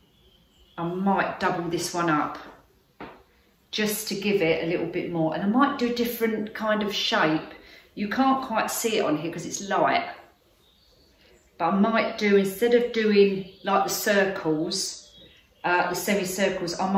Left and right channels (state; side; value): identical; both; correlation 1.00